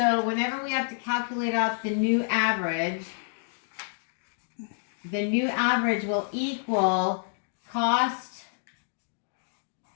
whenever we have to calculate out the new average will equal cost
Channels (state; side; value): silent; right; digital silence